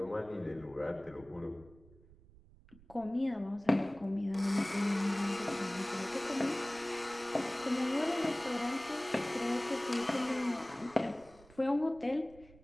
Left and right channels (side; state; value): right; noise; rumble, 24 dB below the sound